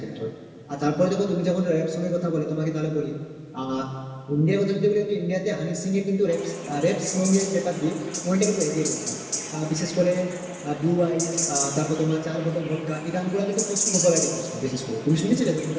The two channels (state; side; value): identical; both; correlation 1.00